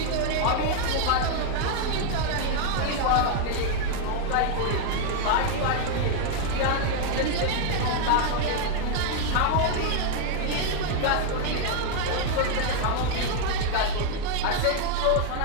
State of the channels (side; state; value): both; different; correlation 0.00